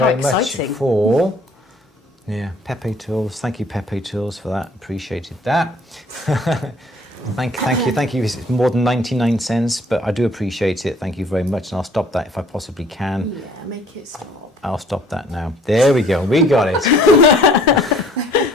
much for Pepe Tools. Thank you, Pepe Tools, for that. Appreciated that. Thank you. It's more than 99 cents, but I do appreciate it. Thank you very much, and I'll stop that if I possibly can. Yeah, make it stop. I'll stop that now. There we go. We got it.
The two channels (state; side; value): normal; both; correlation 0.56